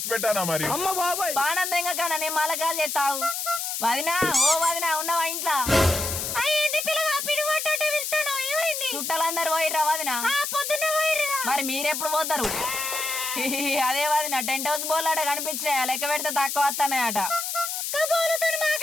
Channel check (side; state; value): left; noise; hiss, 3 dB below the sound